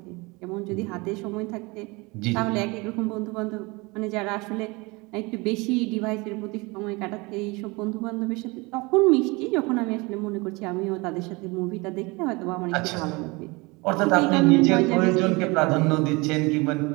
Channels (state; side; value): quieter; left; 25.6 dB